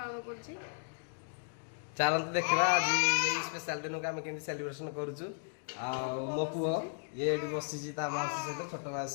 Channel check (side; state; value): right; silent; digital silence